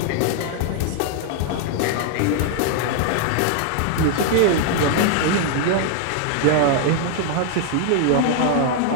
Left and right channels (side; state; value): both; different; correlation 0.00